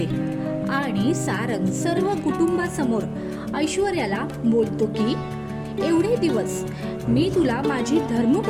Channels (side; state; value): both; identical; correlation 1.00